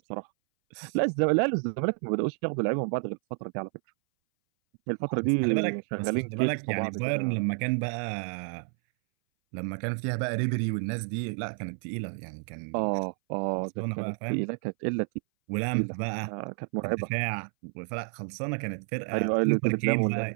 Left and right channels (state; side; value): silent; left; 58 dB below the other